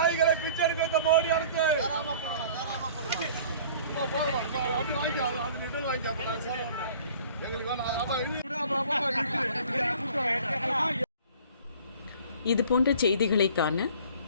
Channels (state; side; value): inverted; both; correlation -0.49